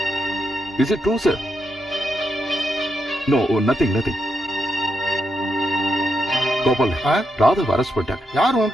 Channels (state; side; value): normal; both; correlation 0.83